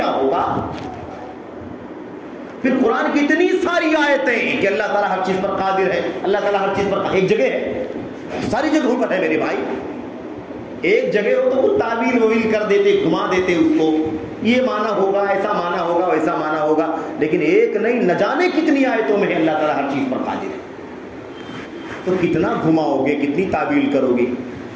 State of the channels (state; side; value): identical; both; correlation 1.00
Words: ہوگا؟ پھر قرآن کی اتنی ساری آیتیں کہ اللہ تعالیٰ ہر چیز پر قادر ہے، اللہ تعالیٰ ہر چیز پر ایک جگہ ہے، ساری جگہوں پر ہے میرے بھائی. ایک جگہ ہو تو وہ تعبیر وویل کر دیتے، گھما دیتے اس کو، یہ معنی ہوگا، ایسا معنی ہوگا، ویسا معنی ہوگا. لیکن ایک نہیں، نہ جانے کتنی آیتوں میں ہے اللہ تعالیٰ ہر چیز پر قادر ہے. تو کتنا گھماؤ گے، کتنی تعبیر کرو گے؟